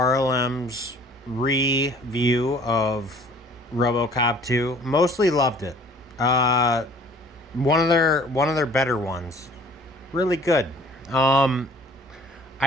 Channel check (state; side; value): normal; both; correlation 0.52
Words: review of Robocop 2. Mostly loved it. Uh, one of their better ones. Really good. Um,